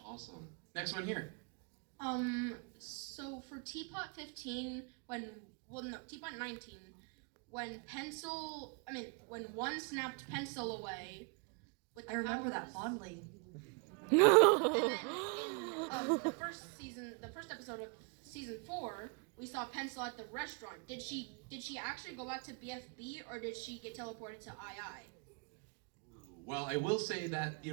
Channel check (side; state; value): left; quieter; 33.9 dB